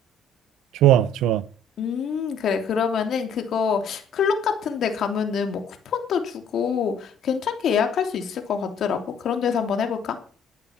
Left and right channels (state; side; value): normal; both; correlation 0.54